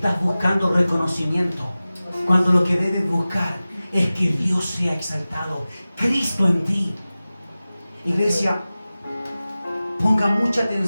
buscando reconocimiento, cuando lo que debes buscar es que Dios sea exaltado, Cristo en ti. Iglesia, ponga mucha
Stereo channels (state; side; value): inverted; both; correlation -0.97